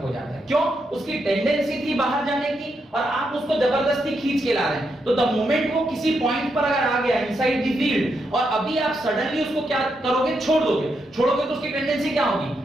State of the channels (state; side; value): normal; both; correlation 0.82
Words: हो जाता है. क्यों, उसकी टेंडेंसी थी बाहर जाने की और आप उसको जबरदस्ती खींच के ला रहे हैं. तो द मोमेंट वो किसी पॉइंट पर अगर आ गया इनसाइड द फील्ड, और अभी आप सडनली उसको क्या करोगे, छोड़ोगे तो उसकी टेंडेंसी क्या होगी,